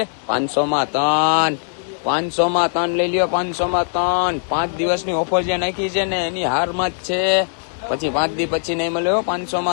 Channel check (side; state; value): right; silent; digital silence